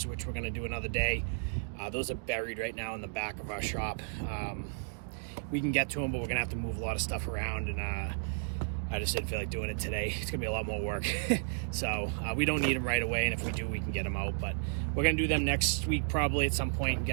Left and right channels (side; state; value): left; silent; digital silence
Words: which we're going to do another day. Those are buried right now in the back of our shop. We can get to them, but we're going to have to move a lot of stuff around, and I just didn't feel like doing it today. It's going to be a lot more work. So we don't need them right away, and if we do, we can get them out. But we're going to do them next week probably at some point and